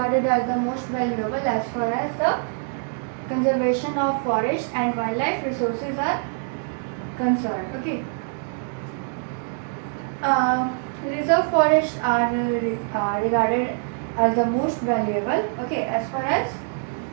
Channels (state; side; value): silent; left; 58 dB below the other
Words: valuable as far as the conservation of forest and wildlife resources are concerned. Okay. Reserve forests are regarded as the most valuable. Okay, as far as